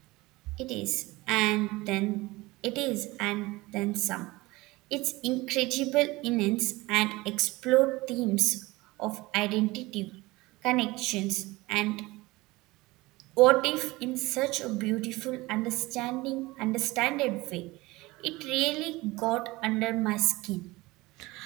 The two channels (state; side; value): quieter; left; 21.0 dB